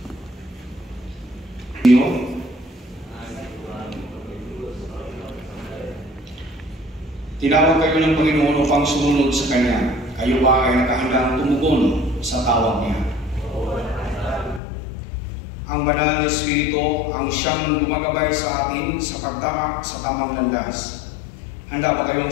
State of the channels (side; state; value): right; drops out; at 14.6 s